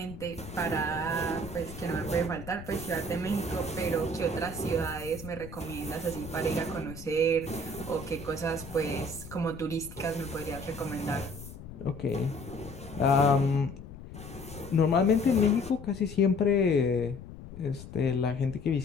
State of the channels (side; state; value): left; noise; rumble, 13 dB below the sound